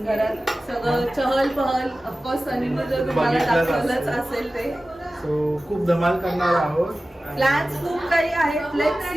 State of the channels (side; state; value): both; normal; correlation 0.96